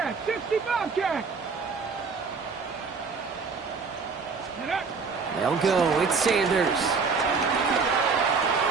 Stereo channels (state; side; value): quieter; left; 5.0 dB